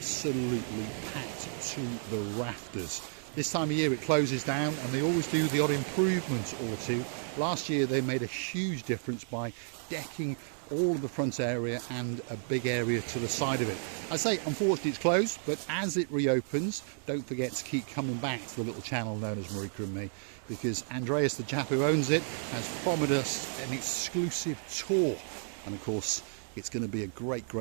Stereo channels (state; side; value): silent; left; digital silence